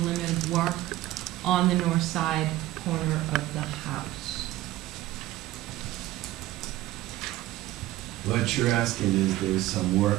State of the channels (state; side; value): quieter; left; 16.1 dB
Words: limit of work on the north side corner of the house? What you're asking is there's some